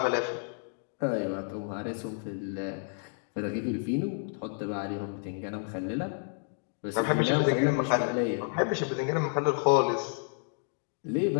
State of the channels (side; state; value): right; silent; digital silence